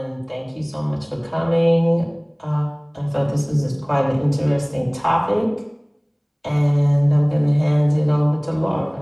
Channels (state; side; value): identical; both; correlation 1.00